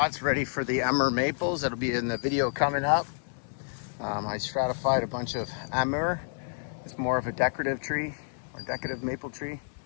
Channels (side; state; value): right; silent; 58 dB below the other